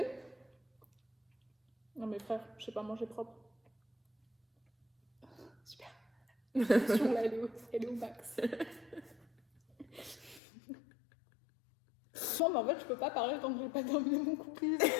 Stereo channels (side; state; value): right; drops out; at 10.4 s